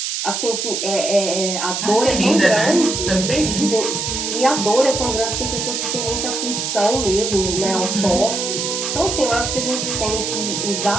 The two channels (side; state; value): right; noise; hiss, 2 dB below the sound